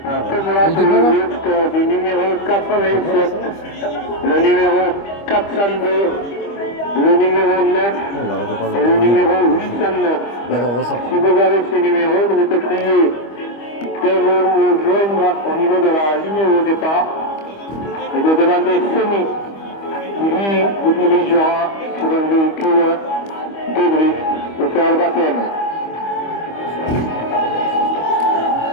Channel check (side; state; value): right; late; 25 ms